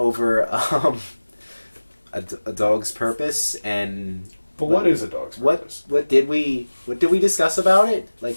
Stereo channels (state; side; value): inverted; both; correlation -1.00